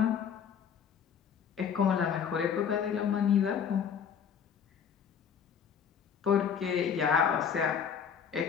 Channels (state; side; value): quieter; right; 7.5 dB